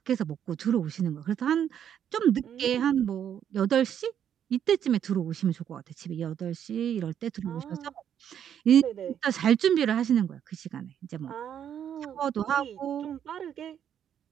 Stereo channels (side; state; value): left; quieter; 9.3 dB